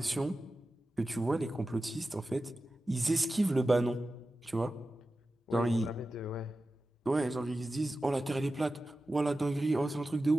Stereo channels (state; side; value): normal; both; correlation 0.94